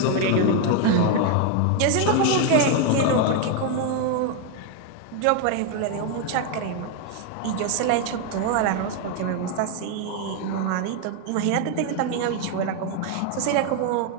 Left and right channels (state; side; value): different; both; correlation 0.01